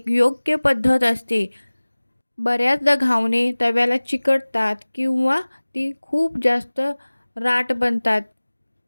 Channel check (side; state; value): both; inverted; correlation -1.00